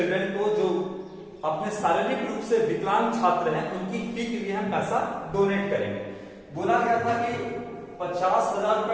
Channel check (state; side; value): identical; both; correlation 1.00